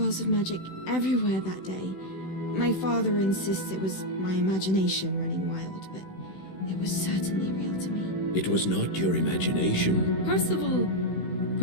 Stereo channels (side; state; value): right; late; 16 ms